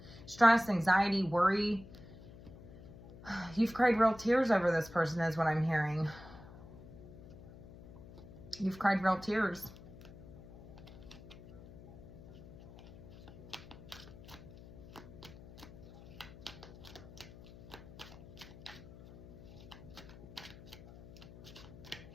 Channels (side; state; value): left; noise; hum, 17 dB below the sound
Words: Stress, anxiety, worry. You've cried real tears over this person is what I'm hearing. You've cried real tears.